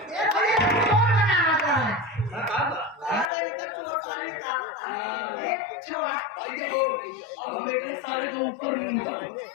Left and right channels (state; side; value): drops out; right; at 3.3 s